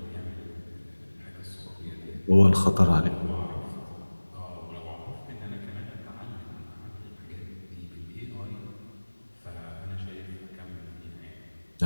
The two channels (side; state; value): both; inverted; correlation -1.00